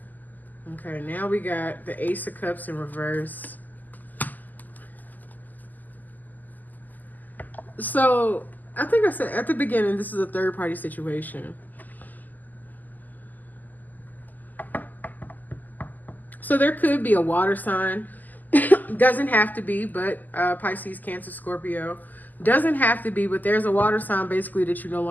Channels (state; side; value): late; right; 0.084 ms